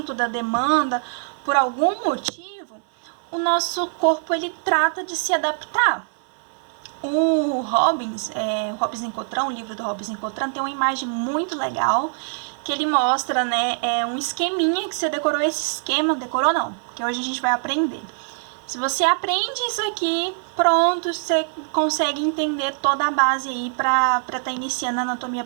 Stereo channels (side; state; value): left; silent; 63 dB below the other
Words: da demanda, por algum motivo, o nosso corpo ele trata de se adaptar. O Robbins e Cottrell, o livro do Robbins e Cottrell, tem uma imagem muito legal que ele mostra, né, um esqueminha que você decorou esse esquema, decorou não, que hoje a gente vai aprender. Se você aprende isso aqui, pronto, você consegue entender toda a base aí para estar iniciando a anatomia